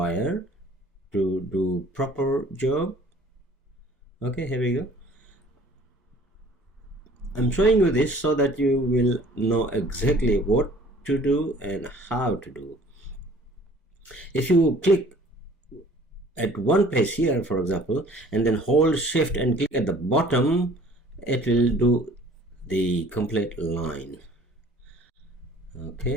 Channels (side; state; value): both; normal; correlation 0.52